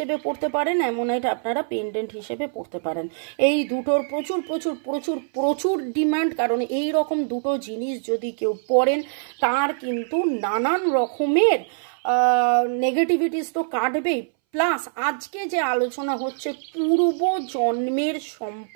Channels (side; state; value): left; silent; 61 dB below the other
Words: পরতে পারেন, অ্যামোনাইট আপনারা পেন্ডেন্ট হিসেবে পরতে পারেন। এই দুটোর প্রচুর প্রচুর প্রচুর প্রচুর ডিমান্ড, কারণ এই রকম দুটো জিনিস যদি কেউ পরেন তার কিন্তু নানান রকমের নেগেটিভিটিস তো কাটবেই। প্লাস আজকে যে আলোচনা হচ্ছে পূর্ব জন্মের